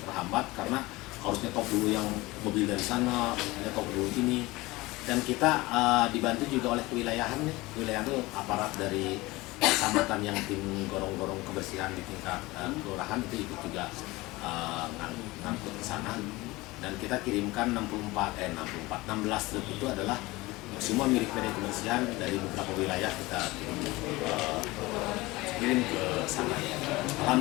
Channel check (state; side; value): quieter; right; 21.0 dB